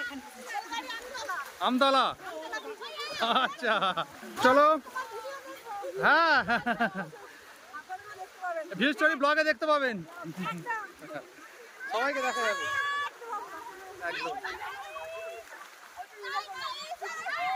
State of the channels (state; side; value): identical; both; correlation 1.00